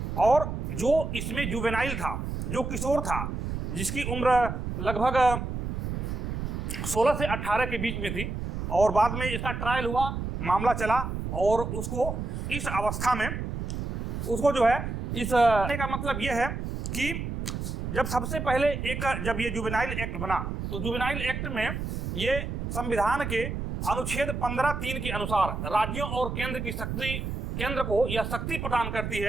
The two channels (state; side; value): noise; right; rumble, 4 dB below the sound